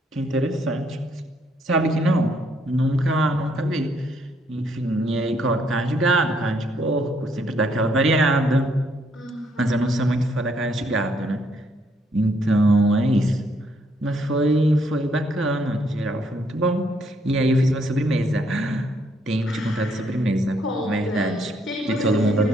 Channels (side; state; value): both; normal; correlation 0.71